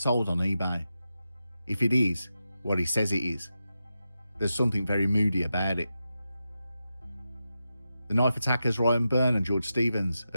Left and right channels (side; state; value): both; inverted; correlation -0.90